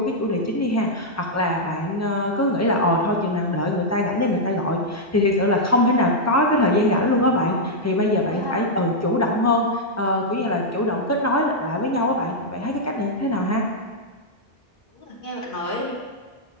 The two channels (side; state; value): both; normal; correlation -0.05